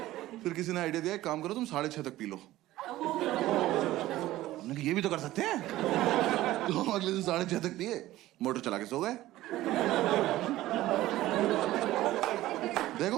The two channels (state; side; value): quieter; left; 15.8 dB